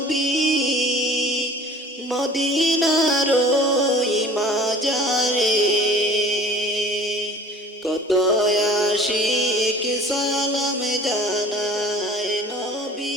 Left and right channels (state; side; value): normal; both; correlation 0.46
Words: মদিনার ওই মাজারে। কত আশিক সালাম জানায়